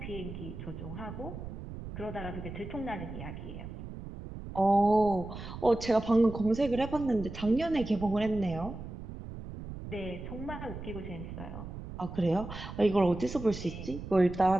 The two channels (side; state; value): right; noise; rumble, 10 dB below the sound